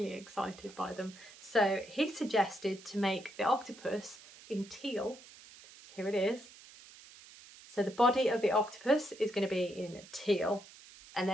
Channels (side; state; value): right; noise; hiss, 20 dB below the sound